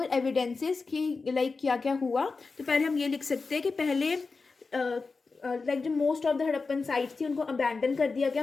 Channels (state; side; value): quieter; right; 4.3 dB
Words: एविडेंसेस कि लाइक क्या क्या हुआ। तो पहले हम ये लिख सकते हैं कि पहले लाइक जो most of the Harappan sites थी उनको अबैंडन कर दिया गया,